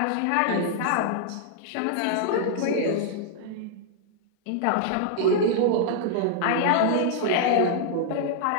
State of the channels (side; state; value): both; different; correlation -0.01